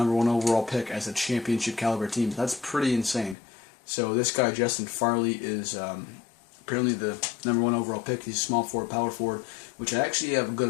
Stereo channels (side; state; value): right; drops out; at 3.4 s